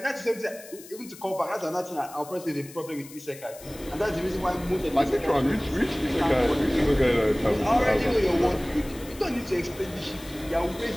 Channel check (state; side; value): noise; left; hiss, 18 dB below the sound